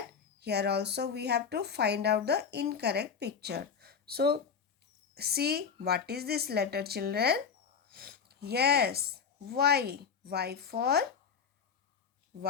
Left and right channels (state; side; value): quieter; right; 6.5 dB